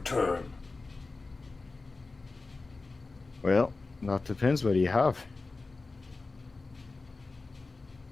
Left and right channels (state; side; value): quieter; right; 3.7 dB